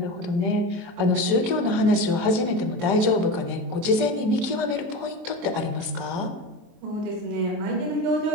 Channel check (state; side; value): late; left; 23 ms